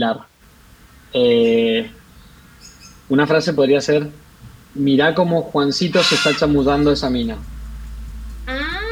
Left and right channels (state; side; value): identical; both; correlation 1.00